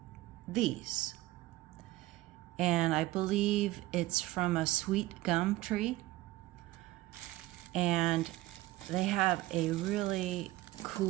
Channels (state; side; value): quieter; left; 18.0 dB